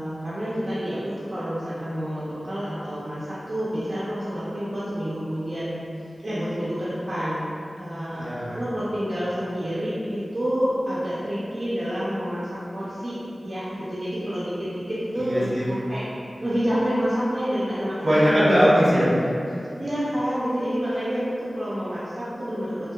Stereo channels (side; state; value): both; normal; correlation 0.97